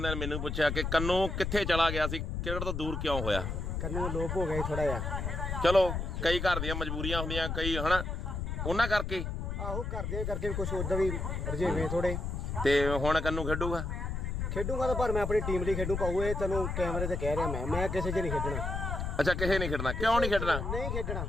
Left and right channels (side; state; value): left; noise; rumble, 3 dB below the sound